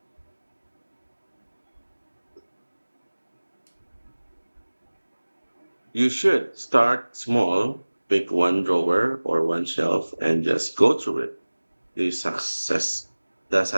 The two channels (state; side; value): inverted; both; correlation -1.00